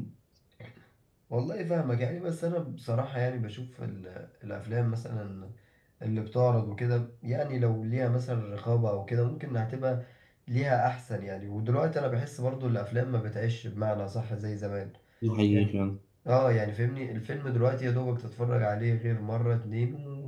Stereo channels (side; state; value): both; identical; correlation 1.00